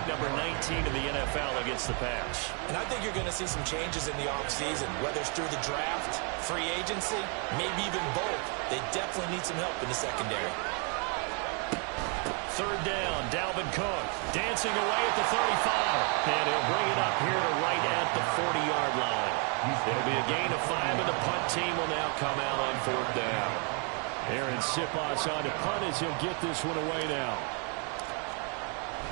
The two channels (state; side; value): quieter; left; 37.8 dB